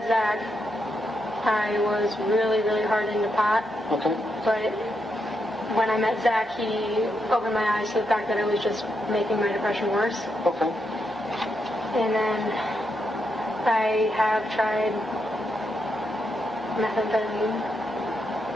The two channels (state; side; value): normal; both; correlation 0.82